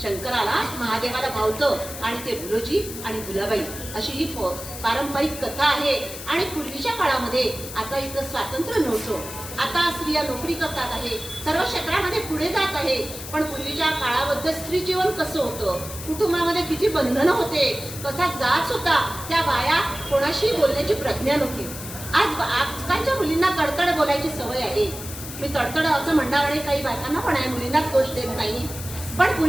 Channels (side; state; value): left; noise; hiss, 11 dB below the sound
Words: शंकराला, महादेवाला भावतं आणि ते भुलोजी आणि भुलाबाई अशी ही पारंपरिक कथा आहे. आणि पूर्वीच्या काळामध्ये, आता इथं स्वातंत्र्य नव्हतं, आता स्त्रिया नोकरी करतात आहे, सर्व क्षेत्रामध्ये पुढे जात आहे, पण पूर्वीच्या काळामध्ये स्त्री जीवन कसं होतं, कुटुंबामध्ये किती बंधनं होते, कसा जाच होता, त्या बाया कोणाशी बोलण्याची प्रज्ञा नव्हती. आजकालच्या मुलींना तडतड बोलायची सवय आहे. मी तडतड असं म्हणणार आणि काही बायकांना पण आहे, मुलींनाच दोष देत नाही, पण